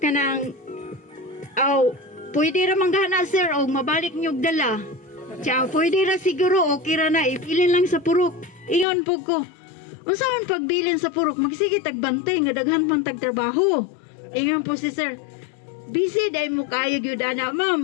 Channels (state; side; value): drops out; right; at 8.8 s